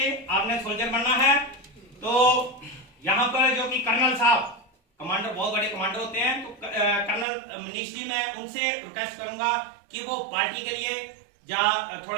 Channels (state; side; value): drops out; left; at 7.2 s